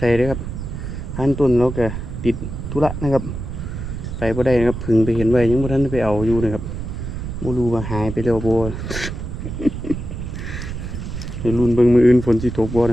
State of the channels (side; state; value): right; noise; rumble, 6 dB below the sound